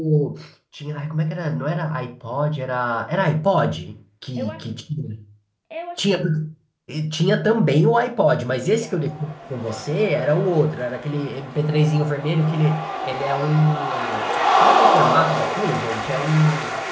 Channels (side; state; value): both; identical; correlation 1.00